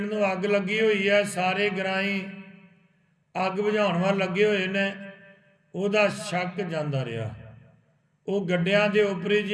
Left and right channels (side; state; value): both; identical; correlation 1.00